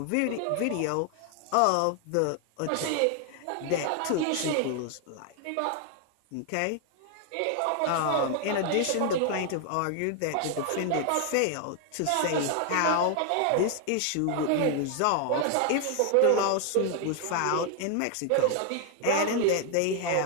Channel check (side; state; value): both; different; correlation 0.00